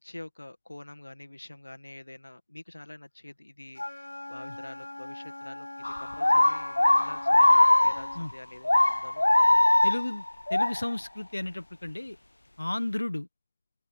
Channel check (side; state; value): both; inverted; correlation -1.00